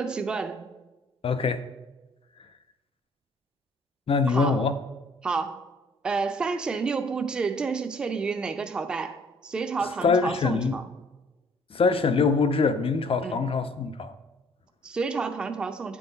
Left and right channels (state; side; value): normal; both; correlation 0.58